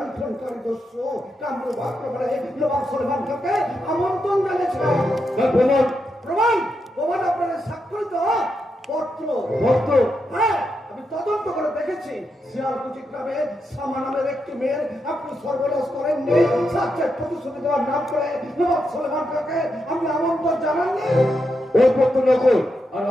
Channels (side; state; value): both; normal; correlation 0.84